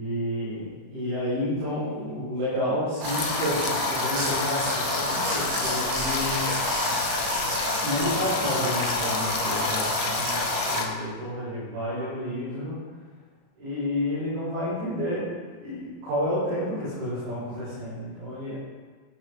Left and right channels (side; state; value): left; late; 36 ms